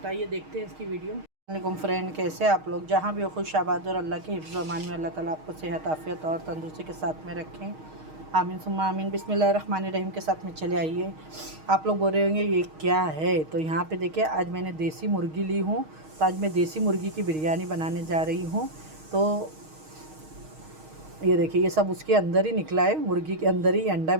तो आइए देखते हैं इसकी वीडियो। वालेकुम फ्रेंड, कैसे आप लोग? जहाँ भी हो खुश आबाद और अल्लाह के हिफ्ज़ अमान में अल्लाह ताला आपको सेहत आफियत और तंदुरुस्ती के साथ में रखें। आमीन सुम्मा आमीन। बिस्मिल्लाहिर्रहमानिर्रहीम के साथ में चले आइए। आप लोग बोल रहे होंगे ये क्या है? तो यहाँ पे देखिए, आज मैंने देसी मुर्गी ली हूँ। तो आज मैं देसी मुर्गी की बिरयानी बनाने जा रही हूँ। तो ये देखिए, ये सब उसके अंदर ही निकला है, मुर्गी के अंदर ही अंडा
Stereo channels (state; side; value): late; left; 6.4 ms